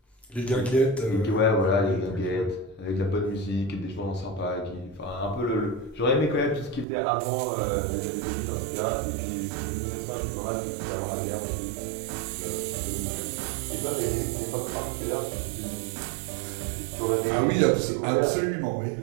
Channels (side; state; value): left; drops out; at 6.9 s